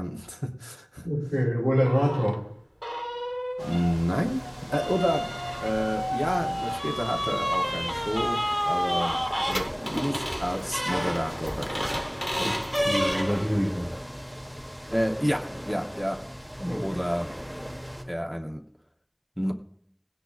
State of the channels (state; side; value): identical; both; correlation 1.00